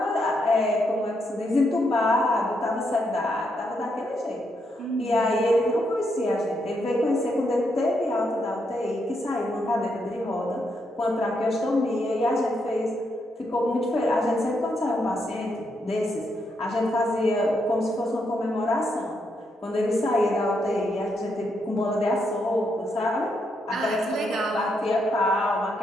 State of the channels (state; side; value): normal; both; correlation 0.79